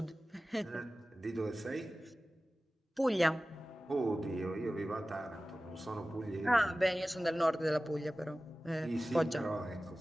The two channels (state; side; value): normal; both; correlation 0.97